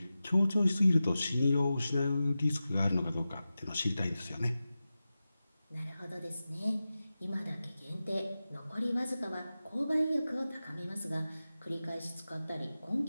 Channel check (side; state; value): both; inverted; correlation -0.94